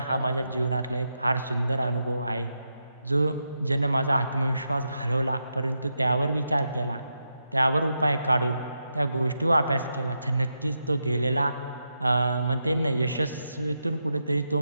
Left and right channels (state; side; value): inverted; both; correlation -0.85